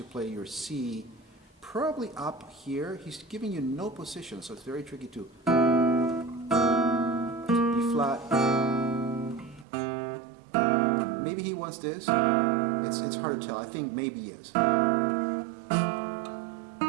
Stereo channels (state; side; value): drops out; left; at 9.7 s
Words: play your C, probably up here. He's giving you no position, so it's very tricky too. B flat. Maybe he wants this. It's hard to tell. I think maybe yes.